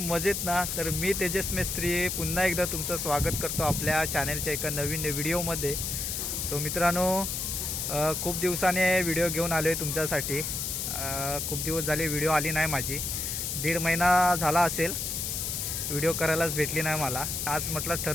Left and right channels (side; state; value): left; noise; hiss, 2 dB below the sound